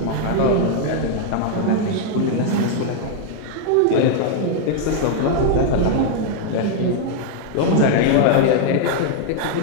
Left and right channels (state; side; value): different; both; correlation 0.00